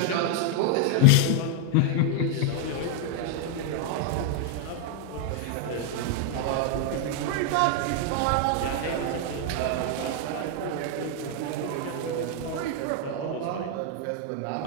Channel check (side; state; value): both; different; correlation 0.00